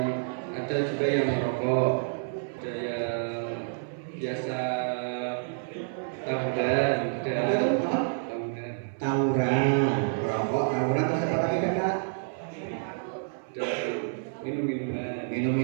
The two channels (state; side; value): silent; left; 59 dB below the other